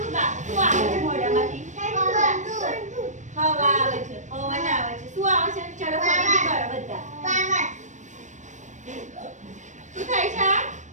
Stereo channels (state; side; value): late; left; 0.35 ms